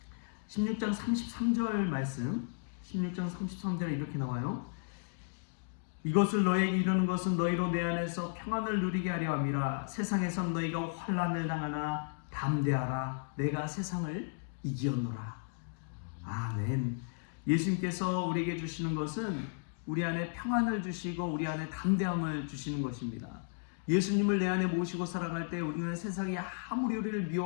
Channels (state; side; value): silent; right; digital silence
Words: 16장 33절 말씀, 16장 33절에 이렇게 나와요. 이것을 너에게 이르는 것은 너희로 내 안에서 평안을 누리게 하려 함이라. 세상에선 너희가 환난을 당하나 담대하라. 내가 세상을 이기었노라. 아멘. 예수님께서 우리에게 주시는 것은 우리 안에 평안을 주시고 우리 안에 담대함을 주시는 것입니다. 예수님을 내 안에 모시고 살아갈 때 우리는 세상이 아무리 우리를